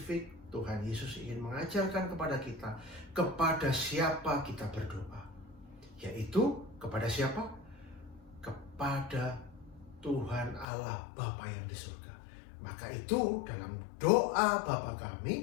Tuhan Yesus ingin mengajarkan kepada kita kepada siapa kita berdoa. Yaitu kepada siapa? Kepada Tuhan Allah Bapa yang di surga. Maka itu dalam doa Bapa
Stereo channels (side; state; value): right; drops out; at 10.7 s